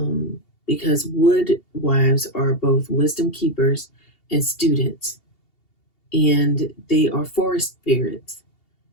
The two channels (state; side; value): late; right; 2.8 ms